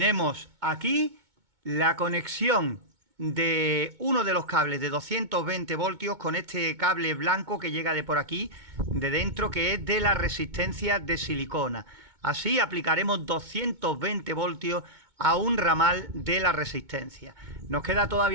aquí la conexión de uno de los cables de 220 voltios con este cable blanco que llega de por aquí, de dentro, que es de la resistencia de silicona. Así aplicaremos 220 voltios a un ramal de la resistencia. Nos queda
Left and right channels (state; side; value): late; left; 2.2 ms